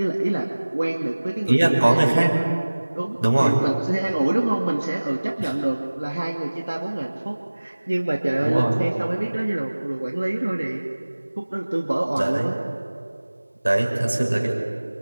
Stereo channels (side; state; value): both; inverted; correlation -1.00